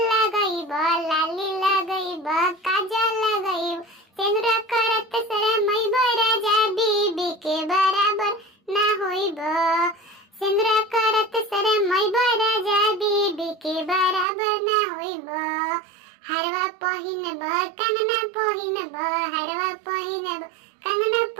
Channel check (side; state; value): left; drops out; at 14.2 s